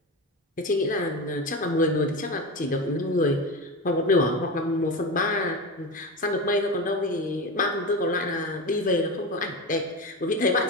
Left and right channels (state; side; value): normal; both; correlation 0.22